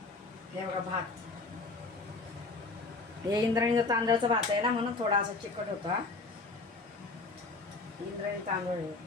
हे बघा भात, हे इंद्रायणीचा तांदळाचा भात आहे ना, म्हणून थोडा असा चिकट होता. इंद्रायणी तांदूळ आहे.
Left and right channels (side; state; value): right; quieter; 3.6 dB